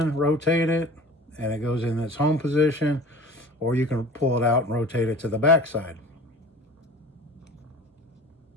rotate it, and it goes in its home position, or you can pull it out and rotate it to the back side.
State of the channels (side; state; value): both; normal; correlation 0.41